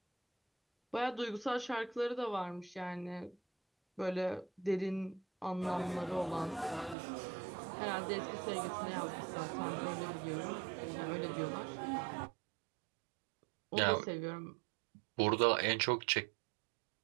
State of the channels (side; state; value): left; drops out; at 7.0 s